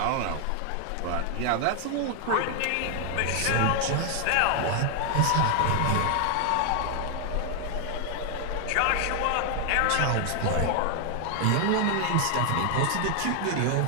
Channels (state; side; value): different; both; correlation 0.00